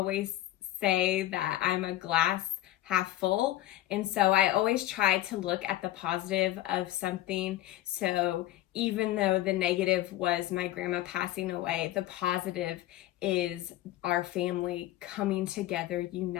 say that I'm a glass half full. And so I always try to look at the positive of something. So even though the negative was my grandma passing away, the positive is our family coming together,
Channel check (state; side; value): quieter; right; 14.8 dB